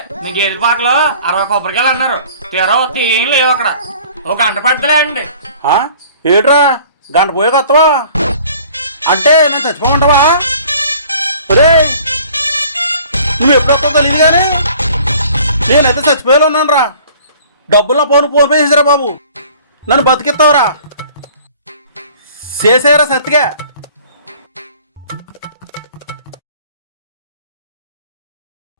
మీ గేదె పాకలో 60 కొబ్బరికాయలు అన్నారు. తీరా వస్తే ఏం లేవు అక్కడ. ఒక గంట పడతలే అండి. ఏట్రా, గంట పోయాక వస్తావా? అంటే నేను చచ్చిపోమంటావా? ఒరే, నువ్వు ఎప్పుడు వస్తావు తెలియదు కానీ నేనైతే చచ్చిపోయేలా ఉన్నాను రా. డబ్బుల్లో ఫోన్ పే చేసారా బాబు, నన్ను బతికిస్తావురా. చేసారా సత్తిగా?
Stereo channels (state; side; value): inverted; both; correlation -0.51